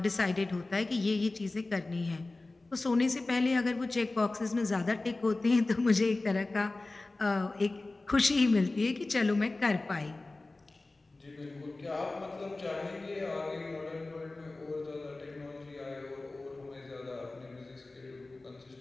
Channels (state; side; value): quieter; right; 3.1 dB